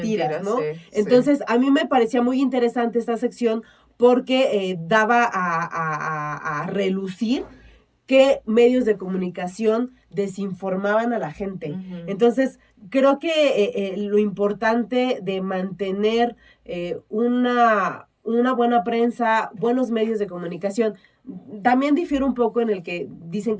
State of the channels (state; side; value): identical; both; correlation 1.00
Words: ¿no? Entonces, a mí me parecía muy interesante esta sección porque daba a relucir qué medios de comunicación desinformaban a la gente. Entonces, creo que lo importante de mantener una buena prensa, buenos medios de comunicación, también difiere un poco en el que dicen